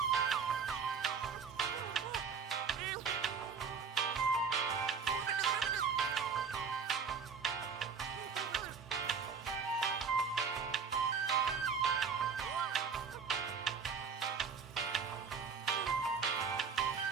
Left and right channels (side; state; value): left; quieter; 5.9 dB